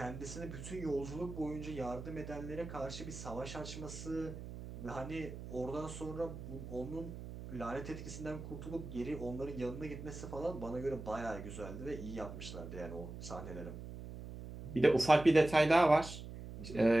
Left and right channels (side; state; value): right; noise; hum, 10 dB below the sound